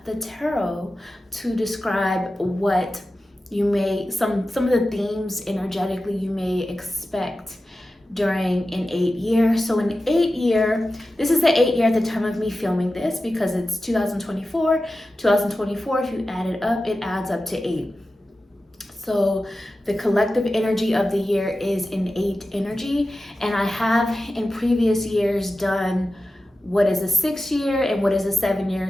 the tarot to describe what you may, some of the themes energetically you may expect during an 8-year. So an 8-year, this is the 8-year at the time of me filming this because it's 2024. 2024, if you add it up, it adds up to 8. So the collective energy of the year is an 8 energy. And I have in previous years done what is a 6-year and what is a 7-year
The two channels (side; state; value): both; normal; correlation 0.94